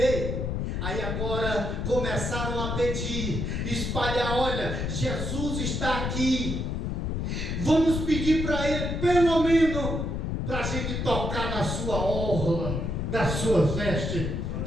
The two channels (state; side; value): noise; left; rumble, 2 dB below the sound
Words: aí agora começaram a pedir, espalhar, olha, Jesus está aqui, vamos pedir para ele, pelo menos, para a gente tocar na sua orla, das suas vestes,